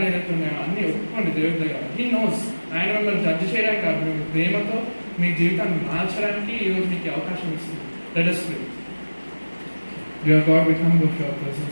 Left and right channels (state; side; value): inverted; both; correlation -1.00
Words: ఏదైతే ఉన్నాయో అన్నీ ఒప్పుకోండి దేవుడి దగ్గర. He knows. ఆయన మిమ్మల్ని జడ్జి చేయడానికి కాదు, మీ ప్రేమతో మీ జీవితాన్ని మార్చడానికి ఈరోజు మీకు అవకాశం ఇస్తుంది. Let us pray. Dear God, we come before your